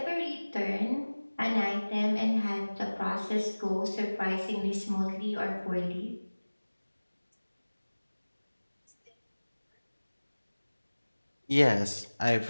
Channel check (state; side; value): inverted; both; correlation -1.00